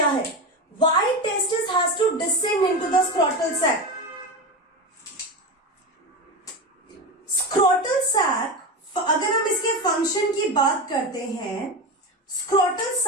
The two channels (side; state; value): both; normal; correlation 0.20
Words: है? Why testis has to descend into the scrotal sac? Scrotal sac, अगर हम इसके फंक्शन की बात करते हैं, scrotal